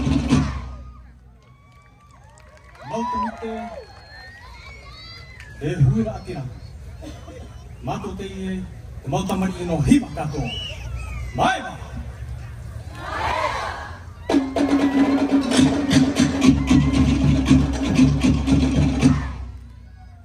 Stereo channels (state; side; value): identical; both; correlation 1.00